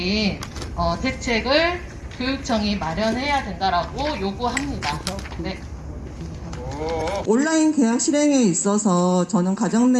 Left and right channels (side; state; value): both; identical; correlation 1.00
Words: 대책을 교육청이 마련해야 된다라고 요구합니다. 네. 온라인 계약 실행에 있어서 저는 가정